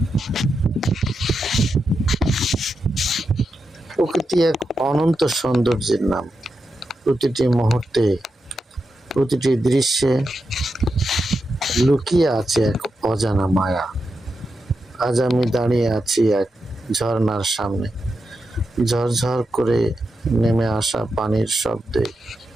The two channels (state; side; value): normal; both; correlation 0.87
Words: প্রকৃতি এক অনন্ত সৌন্দর্যের নাম। প্রতিটি মুহূর্তে, প্রতিটি দৃশ্যে লুকিয়ে আছে এক অজানা মায়া। আজ আমি দাঁড়িয়ে আছি এক ঝর্ণার সামনে। ঝরঝর করে নেমে আসা পানির শব্দে